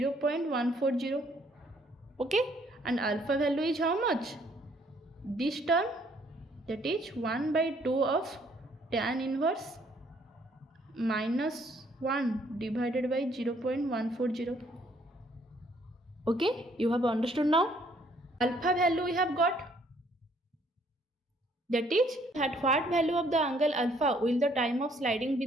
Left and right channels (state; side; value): normal; both; correlation 0.64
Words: Okay, and alpha value is how much? This term, that is 1 by 2 of tan inverse minus 1 divided by 0.140. Okay, you have understood now. Alpha value we have got. That is, at what value of the angle alpha will the time of sliding be